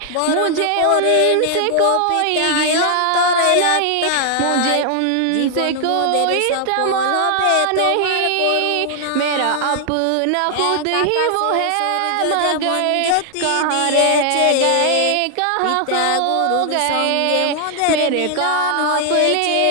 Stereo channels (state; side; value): different; both; correlation 0.00